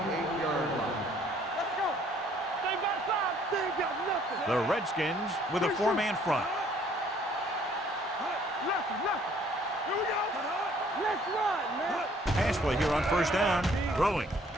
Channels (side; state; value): both; normal; correlation 0.60